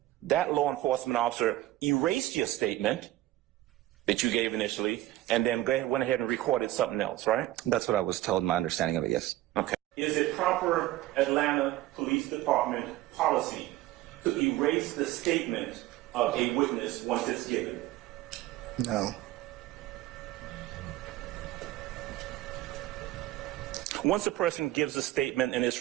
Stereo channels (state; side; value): quieter; left; 15.9 dB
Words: that law enforcement officer erased your statement that you gave initially, and then went ahead and recorded something else, right? That's what I was told, my understanding of it, yes. Okay. Is it proper Atlanta Police Department policy to erase the statement of a witness once it's given? No. Once a person gives a statement and it's